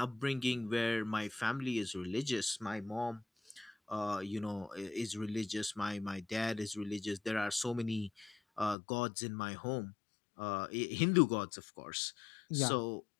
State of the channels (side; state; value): right; drops out; at 8.8 s